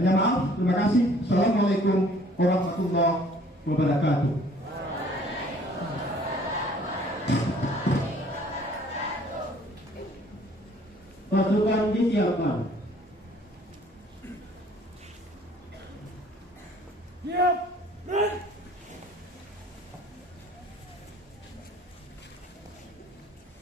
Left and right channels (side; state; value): both; normal; correlation 0.56